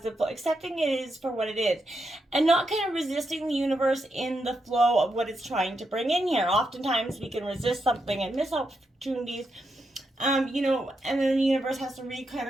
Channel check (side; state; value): both; normal; correlation 0.84